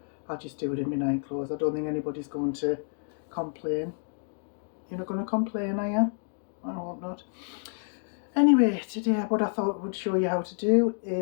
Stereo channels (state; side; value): silent; right; digital silence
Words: I'll just do it in my night clothes. I don't think anybody's going to complain. You're not going to complain, are you? I hope not. Anyway, today what I thought I would show you how to do